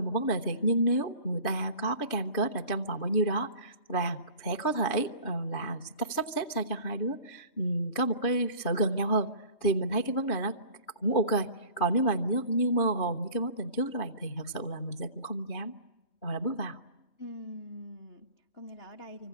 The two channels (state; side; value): late; right; 3.2 ms